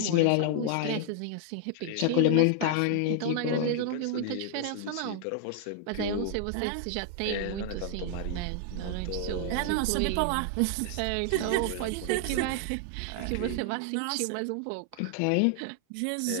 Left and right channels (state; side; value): different; both; correlation 0.00